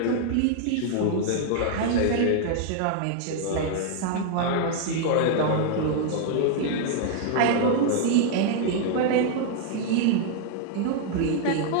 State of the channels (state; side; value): different; both; correlation 0.00